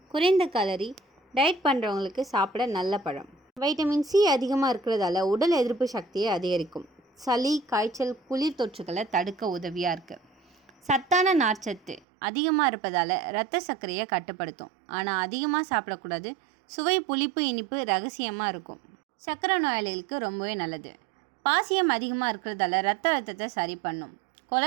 குறைந்த கலரி, டயட் பண்ணுறவங்களுக்கு சாப்பிட நல்ல பழம். வைட்டமின் சி அதிகமாக இருக்கிறதால உடல் எதிர்ப்பு சக்தியை அதிகரிக்கும். சளி, காய்ச்சல், குளிர் தொற்றுகளை தடுக்க உதவியாக இருக்குது. சத்தான நார்ச்சத்து அதிகமாக இருப்பதால் இரத்த சர்க்கரையை கட்டுப்படுத்தும். ஆனால் அதிகமாக சாப்பிடக்கூடாது. சுவை, புளிப்பு, இனிப்பு ரகசியமாக இருக்கும். சர்க்கரை நோயாளிகளுக்கு ரொம்பவே நல்லது. பாசியம் அதிகமாக இருக்கிறதால இரத்த அழுத்தத்தை சரி பண்ணும்.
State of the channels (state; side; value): drops out; left; at 12.0 s